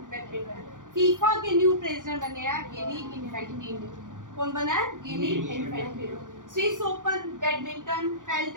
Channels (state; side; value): late; left; 0.88 ms